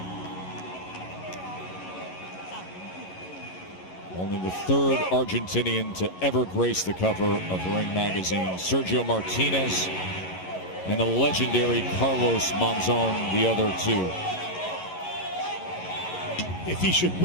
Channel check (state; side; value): late; right; 11 ms